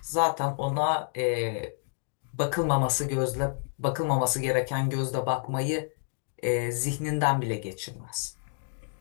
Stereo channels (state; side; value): silent; right; 59 dB below the other